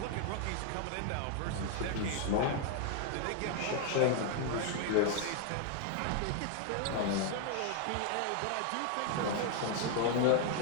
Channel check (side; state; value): both; different; correlation 0.00